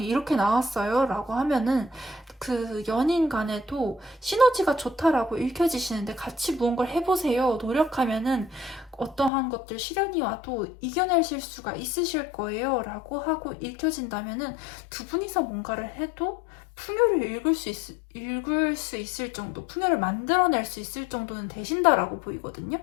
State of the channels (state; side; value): drops out; right; at 9.3 s